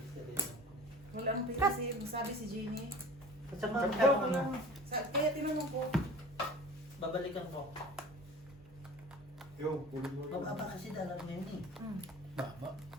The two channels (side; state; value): both; normal; correlation 0.40